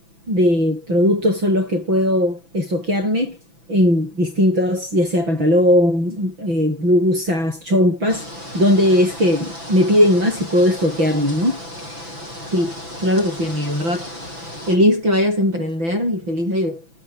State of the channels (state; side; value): late; left; 6.0 ms